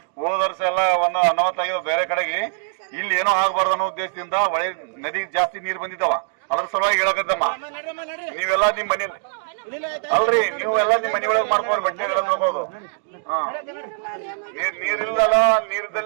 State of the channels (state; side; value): silent; left; digital silence